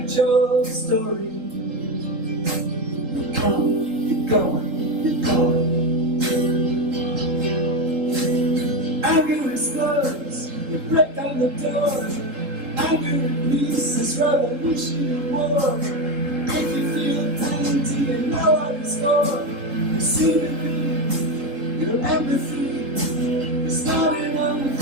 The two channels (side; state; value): left; late; 3.7 ms